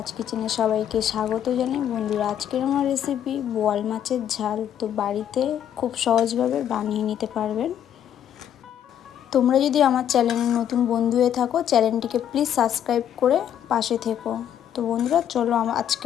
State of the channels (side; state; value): right; quieter; 9.9 dB